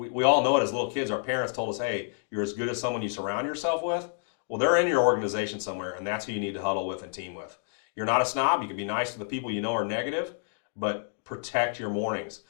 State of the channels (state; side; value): silent; right; digital silence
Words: all know it as little kids. Our parents told us, hey, you're as good as someone you surround yourself with. Well, they're in your organization somewhere, and that's who you need to huddle with and team with. You're not a snob. You can be nice to the people you know are negative, but protect your mornings.